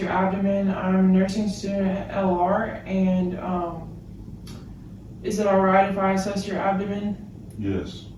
abdomen. I'm a nursing student at LR and is it alright if I assess your abdomen? Yes.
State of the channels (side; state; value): both; identical; correlation 1.00